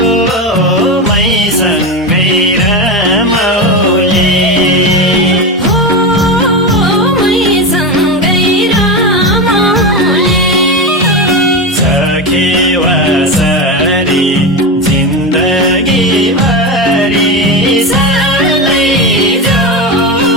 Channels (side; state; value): both; normal; correlation 0.17